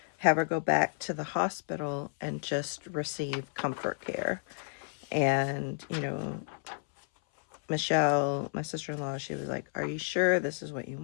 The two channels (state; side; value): silent; right; 57 dB below the other